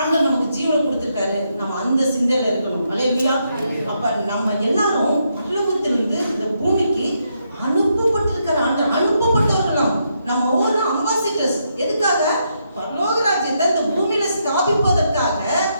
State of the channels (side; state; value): both; inverted; correlation -0.79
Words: நமக்கு ஜீவனை கொடுத்திருக்காரு, நம்ம அந்த சிந்தையில இருக்கணும். அல்லேலூயா. அப்ப நம்ம எல்லாரும் பரலோகத்திலிருந்து இந்த பூமிக்கு அனுப்பப்பட்டிருக்கிற ஆண்டவர், அனுப்பப்பட்டவர்கள் நம்ம ஒரு அம்பாசிடர்ஸ். எதுக்காக? பரலோக ராஜ்யத்தை இந்த பூமியில ஸ்தாபிப்பதற்காக,